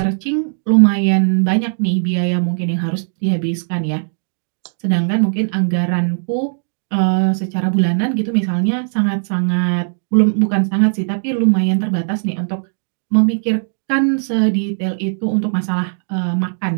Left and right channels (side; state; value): left; silent; digital silence